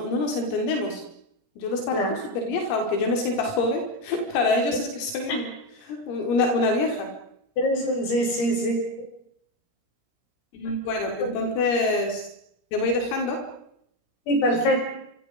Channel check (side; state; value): right; late; 17 ms